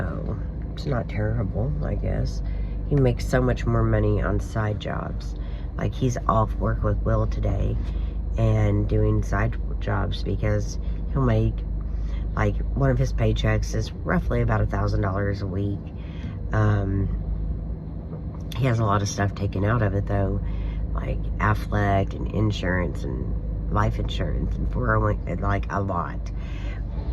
it's not terrible, I guess. He makes so much more money on side jobs. Like, he's off work with Will today and doing side jobs because he'll make, like, one of his paychecks is roughly about $1,000 a week. He has a lot of stuff taken out of it, though, like Affleck and insurance and life insurance and 401, like a lot.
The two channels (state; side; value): identical; both; correlation 1.00